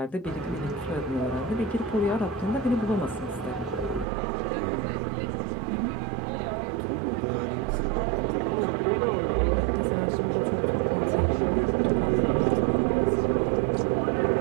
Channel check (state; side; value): drops out; left; at 4.0 s